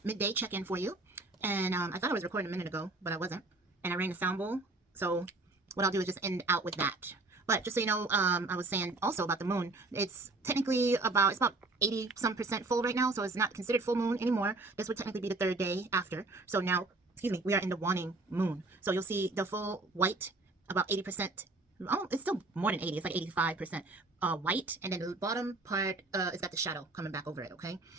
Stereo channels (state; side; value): quieter; left; 3.2 dB